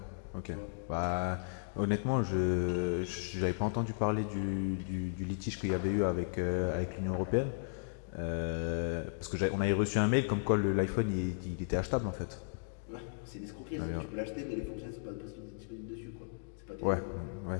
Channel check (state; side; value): silent; right; digital silence